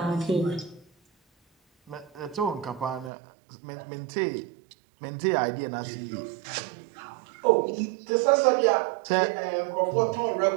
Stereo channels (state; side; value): drops out; left; at 3.1 s